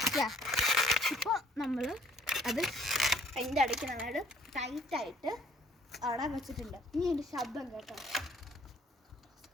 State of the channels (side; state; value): both; normal; correlation 0.61